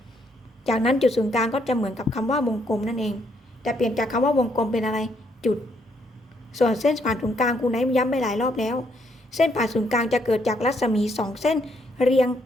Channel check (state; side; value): normal; both; correlation 0.73